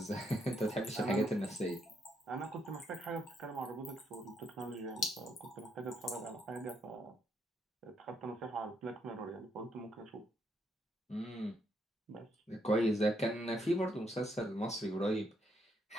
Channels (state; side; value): normal; both; correlation 0.75